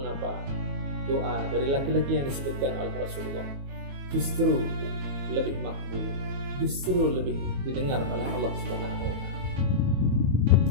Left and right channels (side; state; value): left; late; 22 ms